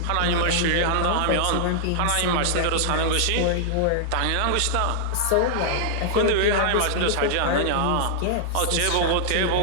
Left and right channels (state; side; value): different; both; correlation -0.01